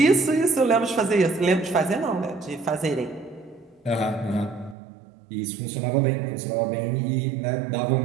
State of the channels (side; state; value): left; drops out; at 4.8 s